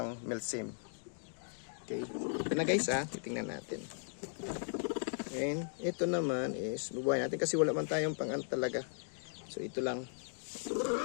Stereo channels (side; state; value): right; silent; digital silence